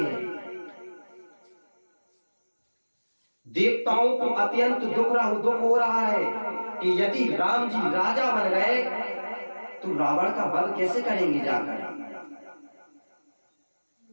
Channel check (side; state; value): both; inverted; correlation -1.00